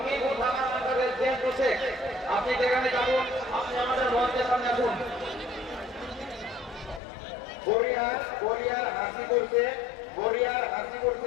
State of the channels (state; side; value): drops out; right; at 7.0 s